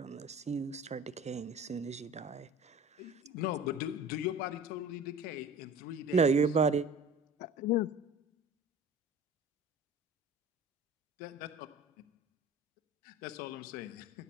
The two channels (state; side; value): normal; both; correlation 0.40